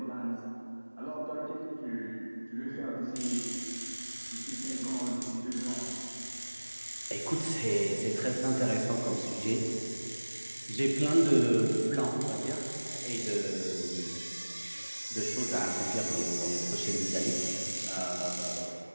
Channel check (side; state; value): both; inverted; correlation -1.00